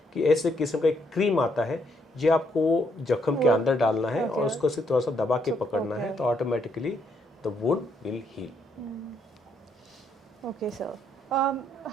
कि ऐसे किस्म का एक क्रीम आता है जो आपको जख्म के अंदर डालना है और उसको सिर्फ थोड़ा सा दबा के पकड़ना है, तो automatically the wound will heal. Okay sir.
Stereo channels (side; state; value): both; normal; correlation 0.73